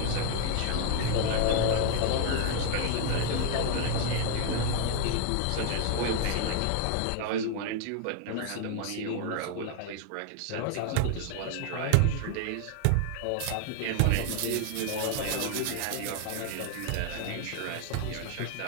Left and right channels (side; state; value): both; different; correlation 0.00